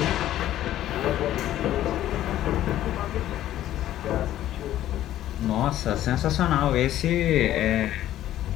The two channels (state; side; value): quieter; right; 13.0 dB